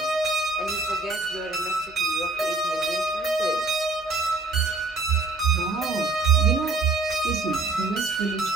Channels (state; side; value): quieter; left; 3.5 dB